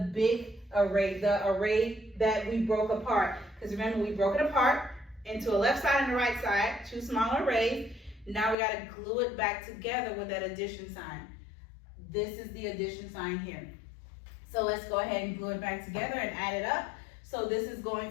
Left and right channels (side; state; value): right; drops out; at 8.6 s